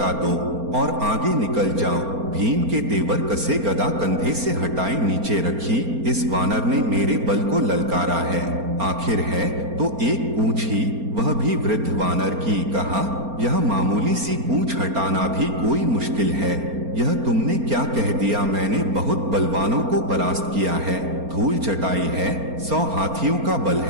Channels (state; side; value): late; left; 4.3 ms